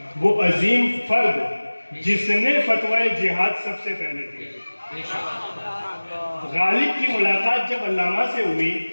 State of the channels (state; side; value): inverted; both; correlation -1.00